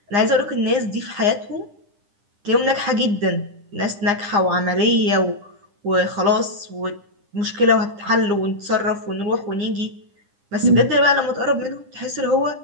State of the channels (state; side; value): late; left; 9.9 ms